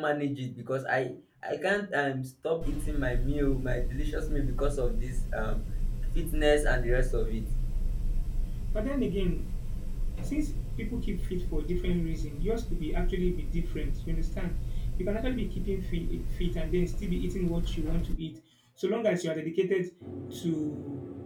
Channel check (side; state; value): both; identical; correlation 1.00